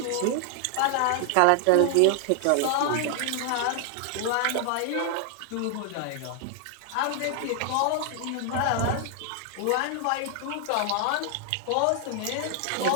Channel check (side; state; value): both; different; correlation 0.00